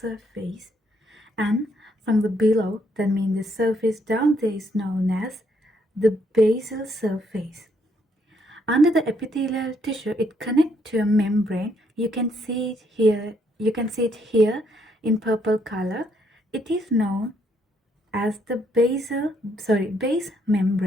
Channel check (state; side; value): normal; both; correlation 0.72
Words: and from the below, that means the surface down there, is known as the basal surface. Under the epithelial tissue, it connects to a membrane. You can see it here. You can see it here in purple color. It is known as the base